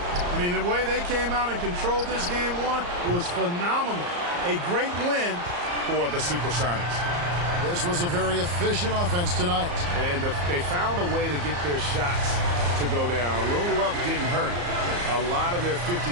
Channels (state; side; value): late; left; 34 ms